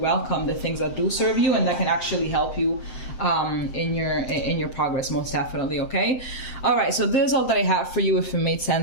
the things that do serve you, and that can actually help you in your progress, most definitely. Okay. All right. So this is all that I have for you. If it made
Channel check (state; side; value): late; right; 7.7 ms